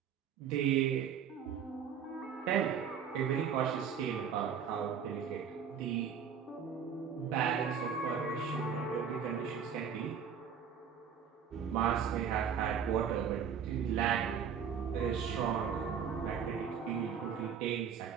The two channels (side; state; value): left; quieter; 7.4 dB